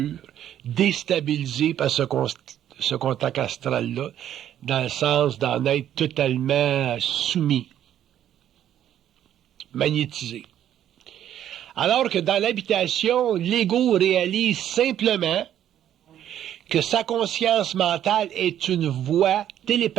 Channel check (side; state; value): left; quieter; 10.9 dB